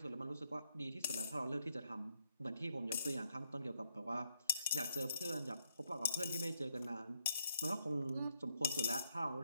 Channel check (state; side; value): inverted; both; correlation -0.77